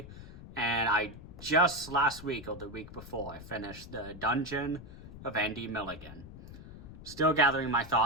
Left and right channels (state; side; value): noise; left; rumble, 15 dB below the sound